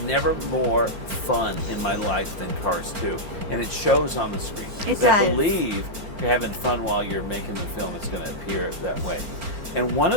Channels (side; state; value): left; late; 4.4 ms